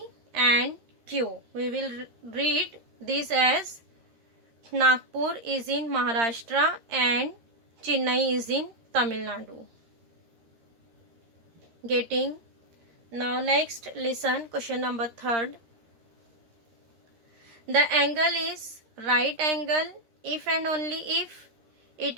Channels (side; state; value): left; late; 13 ms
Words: and Q. We will read this as Nagpur is in Maharashtra and Chennai is in Tamil Nadu. Getting? Now next, listen, question number 3. The angle is right angle if and only if